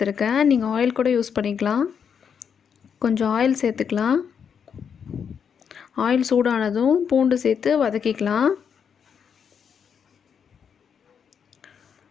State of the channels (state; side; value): quieter; right; 7.2 dB